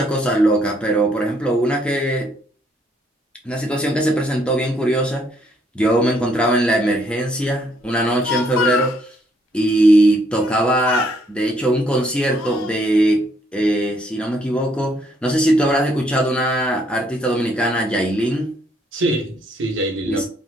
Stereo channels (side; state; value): both; normal; correlation 0.69